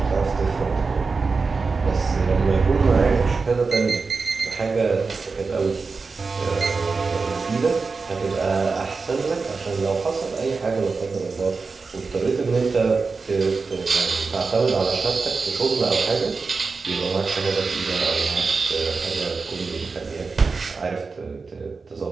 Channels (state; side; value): quieter; left; 4.4 dB